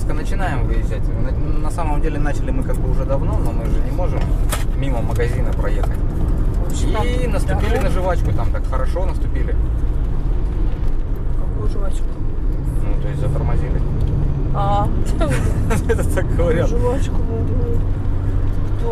начинаем выезжать. На самом деле начали мы как бы уже давно, но мы же не можем мимо магазина проехать. И наступили на жвачку, там так хорошо наступили. Какую жвачку? Ну, то есть затормозили. Это так говорят. Жвачку.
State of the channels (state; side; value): identical; both; correlation 1.00